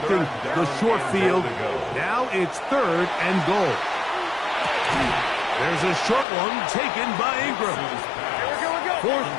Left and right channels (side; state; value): right; drops out; at 6.2 s